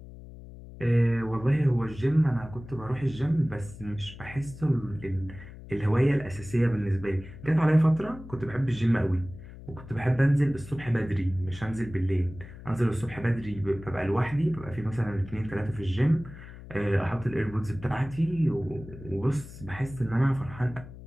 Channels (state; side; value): noise; left; hum, 15 dB below the sound